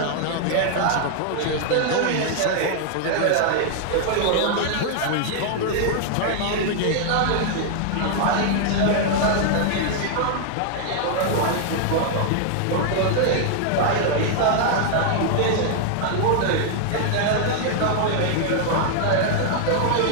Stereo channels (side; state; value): both; different; correlation 0.00